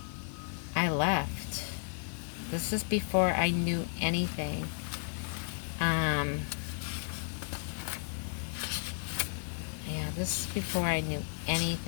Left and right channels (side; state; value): right; silent; 55 dB below the other